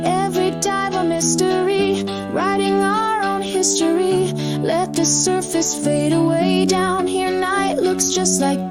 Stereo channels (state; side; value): identical; both; correlation 1.00